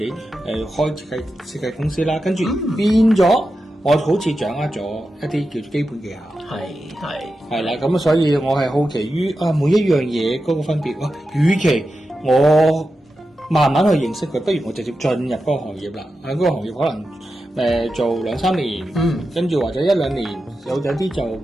開設計公司啦。跟住變咗，我好似掌握咗一啲叫做基本技巧。係啦，咁所以我係好奇於每一樣嘢嗰個分別。與其我慢慢去認識佢，不如我直接進入嗰個行業啦。喺嗰個行業可能做2-3年，跟住或者1-2年，有啲就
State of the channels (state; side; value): normal; both; correlation 0.90